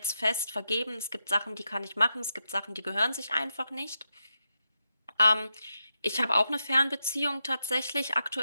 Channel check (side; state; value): both; inverted; correlation -0.87